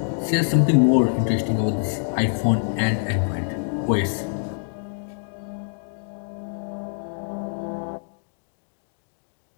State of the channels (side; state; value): right; silent; digital silence